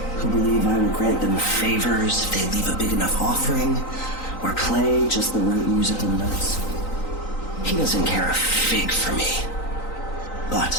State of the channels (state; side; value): late; right; 3.9 ms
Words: who believe I will grant them favors if they leave a big enough offering or play just the right musical notes. He doesn't care a fig for me.